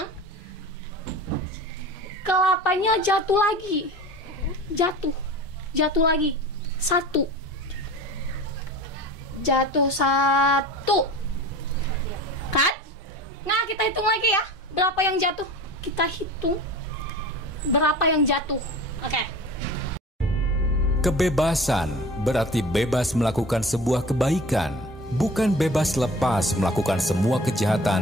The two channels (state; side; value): normal; both; correlation 0.38